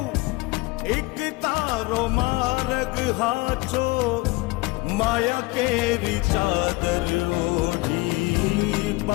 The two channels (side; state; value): right; quieter; 23.2 dB